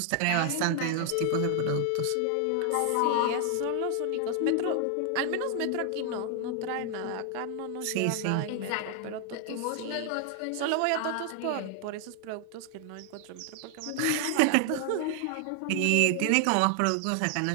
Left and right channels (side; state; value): both; different; correlation 0.00